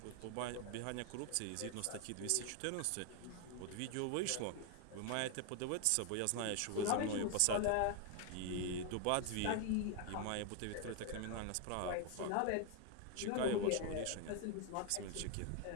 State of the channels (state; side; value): different; both; correlation 0.00